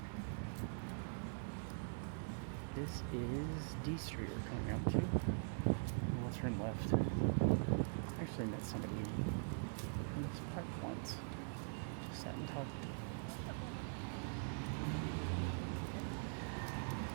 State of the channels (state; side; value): silent; left; digital silence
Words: This is D Street we're coming out to. We'll turn left. I actually met somebody in this park once. Just sat and talked.